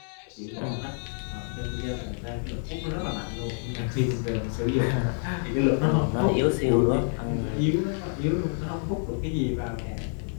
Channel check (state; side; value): silent; right; 60 dB below the other